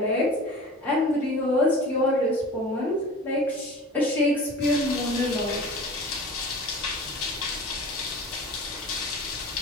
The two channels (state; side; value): normal; both; correlation 0.38